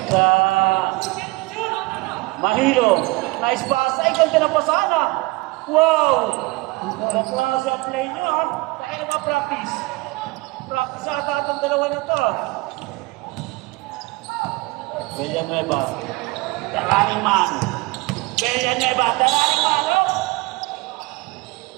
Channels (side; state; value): left; quieter; 23.3 dB